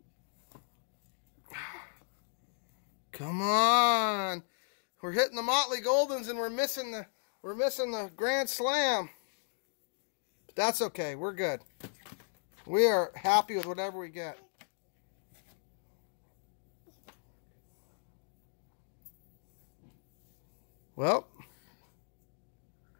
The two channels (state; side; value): silent; right; digital silence